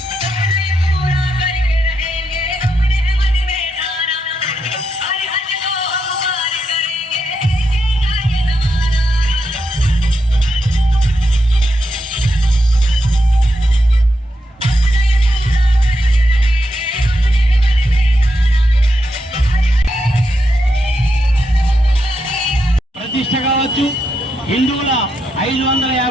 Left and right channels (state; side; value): normal; both; correlation 0.83